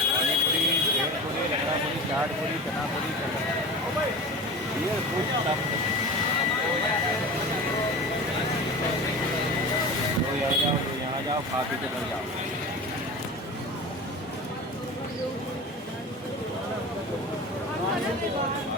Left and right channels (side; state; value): both; normal; correlation 0.32